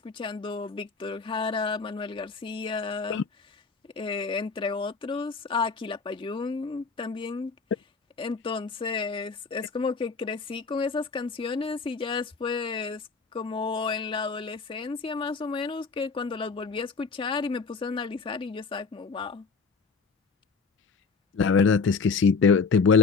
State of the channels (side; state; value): right; quieter; 4.7 dB